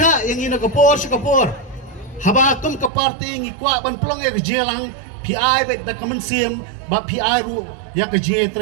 yang ina kapor si kapor habakum ka party ngi kwa ban plong e ka jelang pi ai bet da kamensim ba pi ai ru ya ka je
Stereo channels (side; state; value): left; drops out; at 2.9 s